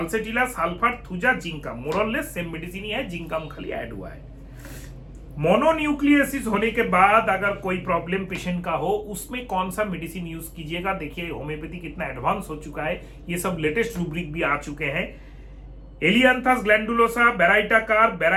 sulphur, thuja, जिंकम, मोरलेस same medicine ही है, जिंकम खाली ऐड हुआ है। मोनोन्यूक्लियोसिस होने के बाद अगर कोई प्रॉब्लम पेशेंट का हो, उसमें कौन सा मेडिसिन यूज कीजिएगा? देखिए होम्योपैथी कितना एडवांस हो चुका है, ये सब लेटेस्ट रूब्रिक भी आ चुके हैं। एलियांथस ग्लैंडुलोसा, बेराइटाकार,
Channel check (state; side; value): identical; both; correlation 1.00